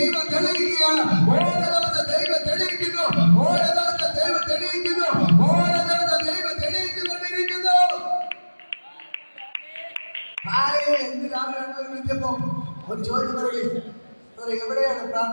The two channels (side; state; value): both; inverted; correlation -1.00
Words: തെളിയിക്കുകയാണ്. ഓരോ ദിവസം ദൈവം തെളിയിക്കുന്നു, ഓരോ ദിവസം ദൈവം തെളിയിക്കുന്നു, ഓരോ ദിവസം ദൈവം തെളിയിച്ചുകൊണ്ടിരിക്കുന്നു. എന്ത് രാവിലെ ഒരു ചോദ്യം പറയുകയും, എവിടെയാണ്